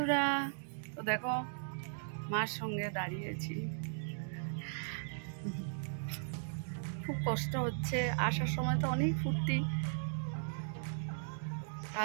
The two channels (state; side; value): silent; left; digital silence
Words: তো দেখো মার সঙ্গে দাঁড়িয়েছি, খুব কষ্ট হচ্ছে। আসার সময় তো অনেক ফুর্তি,